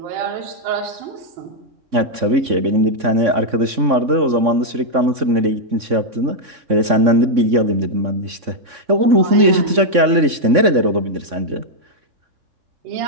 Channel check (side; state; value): left; late; 3.6 ms